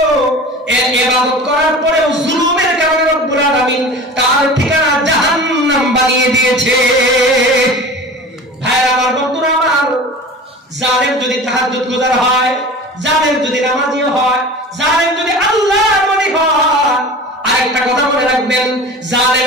ইবাদত করার পরেও জুলুমের কারণে রব্বুল আলামিন তার ঠিকানা জাহান্নাম বানিয়ে দিয়েছে। ভাইরা আমার, বন্ধুরা আমার, জালেম যদি তাহাজ্জুদ গুজার হয়, জালেম যদি নামাজি হয়, জালেম যদি আল্লাহর ওলি হয়, আরেকটা কথা মনে রাখবেন,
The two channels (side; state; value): both; normal; correlation 0.37